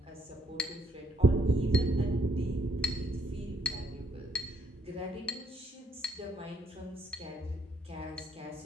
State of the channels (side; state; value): both; normal; correlation 0.71